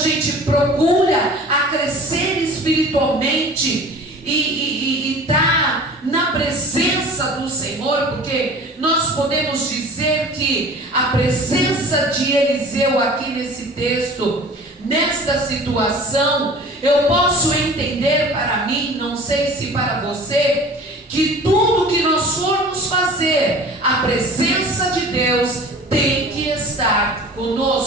procura a crescer espiritualmente e tá na presença do Senhor, porque nós podemos dizer que a presença de Eliseu aqui nesse texto, nesta situação, eu posso entender para mim, não sei se para você, que tudo que nós formos fazer, a presença de Deus tem que estar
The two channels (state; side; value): normal; both; correlation 0.42